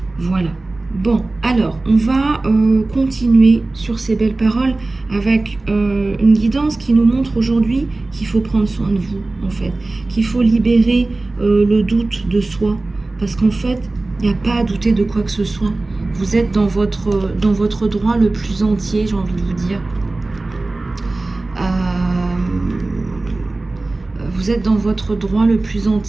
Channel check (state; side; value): quieter; left; 3.1 dB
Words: Voilà. Bon, alors, on va continuer sur ces belles paroles avec une guidance qui nous montre aujourd'hui qu'il faut prendre soin de vous, en fait. Qu'il faut libérer le doute de soi. Parce qu'en fait, il n'y a pas à douter de quoi que ce soit. Vous êtes dans votre droit le plus entier, j'ai envie de vous dire. Vous êtes dans votre droit le plus